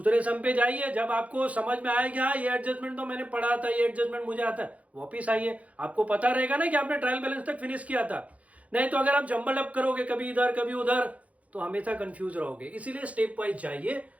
सम पे जाइए, जब आपको समझ में आएगा हाँ ये एडजस्टमेंट तो मैंने पढ़ा था, ये एडजस्टमेंट मुझे आता है, वापिस आइए, आपको पता रहेगा ना कि आपने ट्रायल बैलेंस तक फिनिश किया था। नहीं तो अगर आप जंबल अप करोगे कभी इधर कभी उधर, तो हमेशा कंफ्यूज रहोगे। इसीलिए स्टेप वाइज जाइए।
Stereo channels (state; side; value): late; left; 0.067 ms